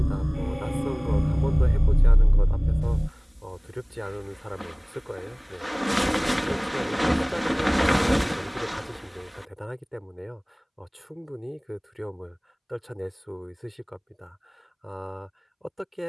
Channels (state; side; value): identical; both; correlation 1.00